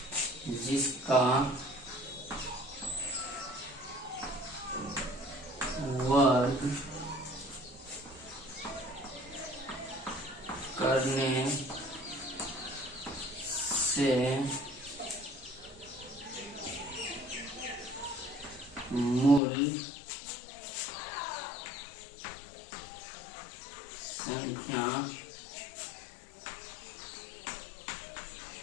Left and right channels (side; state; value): right; drops out; at 19.4 s